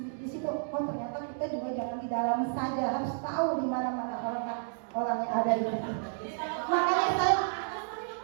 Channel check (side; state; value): left; silent; digital silence